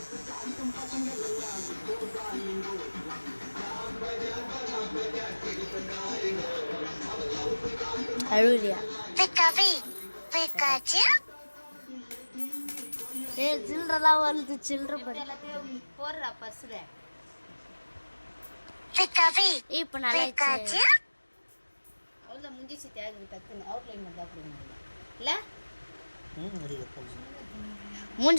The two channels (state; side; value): inverted; both; correlation -1.00